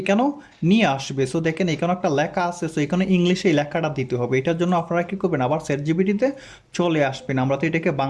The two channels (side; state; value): both; identical; correlation 1.00